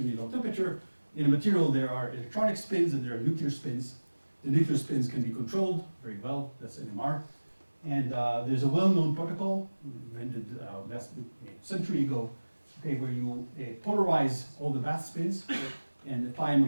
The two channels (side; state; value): both; inverted; correlation -1.00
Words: low temperature. In a material, there are electronic spins and there are nuclear spins. The nuclear spins can be controlled very well. That's NMR. And there's a well-known protocol invented last century ago, okay, where you polarize all the bath spins and apply a